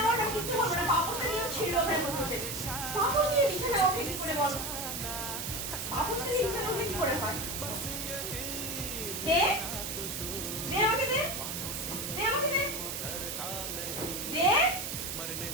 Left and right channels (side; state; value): right; noise; hiss, 4 dB below the sound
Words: ওঠা কিচ্ছু হবে না, পাপোশটা নিয়ে ছিল ওখানে বসে। পাপোশ নিয়ে বিছানায় ওঠে কি করে বলো? পাপোশটা নিয়ে বিছানায় ওঠে কি করে হয়? দে দে আমাকে দে, দে আমাকে দে, দে